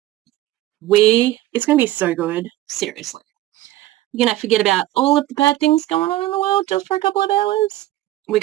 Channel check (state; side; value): quieter; left; 15.7 dB